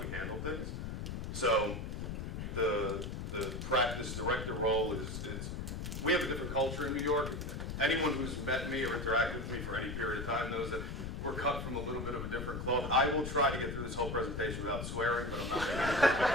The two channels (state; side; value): noise; left; rumble, 5 dB below the sound